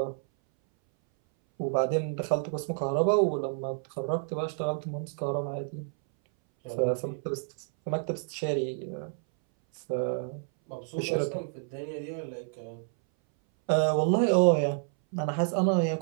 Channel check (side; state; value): left; silent; 58 dB below the other